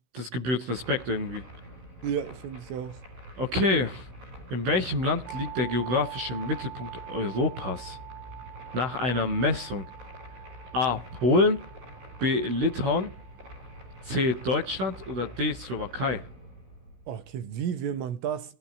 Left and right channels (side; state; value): left; late; 16 ms